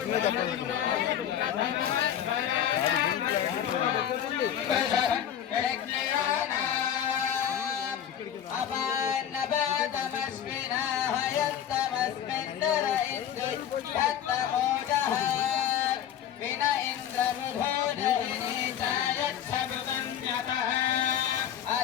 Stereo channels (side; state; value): right; quieter; 9.7 dB